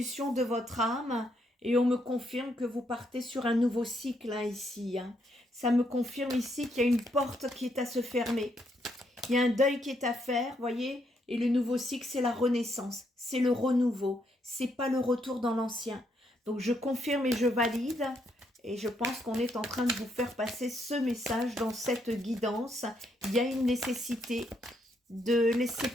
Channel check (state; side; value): normal; both; correlation 0.75